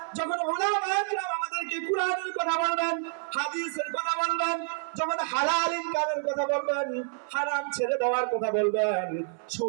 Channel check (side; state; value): left; silent; 59 dB below the other